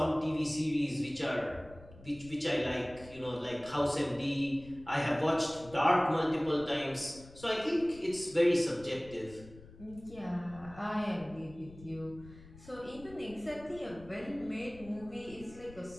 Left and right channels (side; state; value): left; noise; rumble, 19 dB below the sound